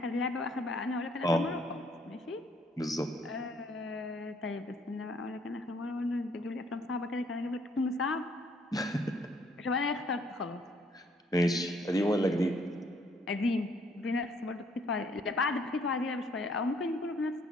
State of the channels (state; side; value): normal; both; correlation 0.65